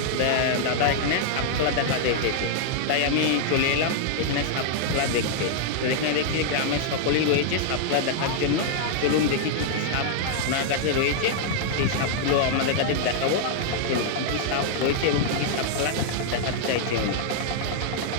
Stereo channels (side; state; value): both; different; correlation -0.01